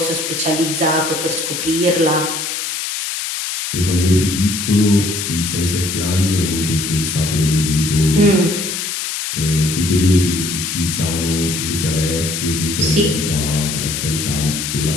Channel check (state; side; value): noise; left; hiss, 4 dB below the sound